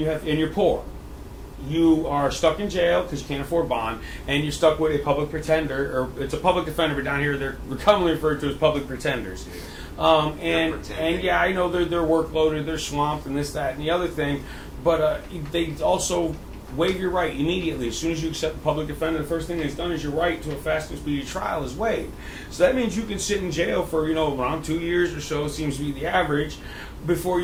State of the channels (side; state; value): both; identical; correlation 1.00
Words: poor, you are stuck in jail because you can't afford bond, and you're stuck with a public pretender, or it's a public defender, but down here they're commonly referred to as public pretenders. And yeah, I know they're workloaded, they're swamped, and this, that, and the other thing, but they also waive your right immediately. As soon as you accept the public defender, the first thing that's done is your right to a fast and speedy trial is waived. So that means you can sit in jail for, around 2 years or so, seems to be the average, before